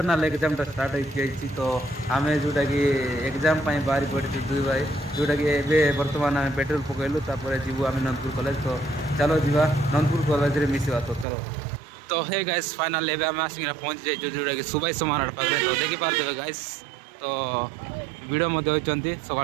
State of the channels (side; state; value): left; drops out; at 11.2 s